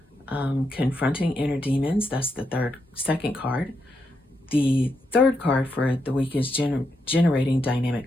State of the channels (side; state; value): both; normal; correlation 0.82